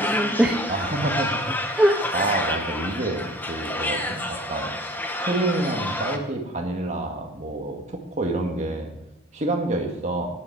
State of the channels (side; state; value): both; normal; correlation 0.47